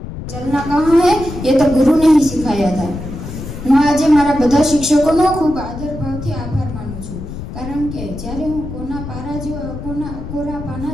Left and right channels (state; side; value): noise; left; rumble, 9 dB below the sound